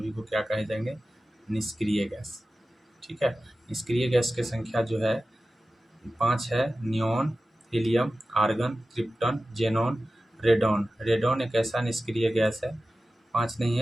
को क्या कहे जाएंगे, निष्क्रिय गैस, ठीक है। निष्क्रिय गैस की संख्या जो है 5 है, neon, helium, argon, krypton, xenon, radon. Radon एक ऐसा निष्क्रिय गैस है, 5 नहीं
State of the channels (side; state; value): both; normal; correlation 0.95